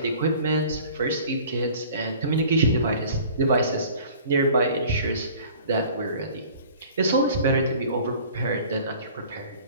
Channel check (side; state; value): both; inverted; correlation -0.48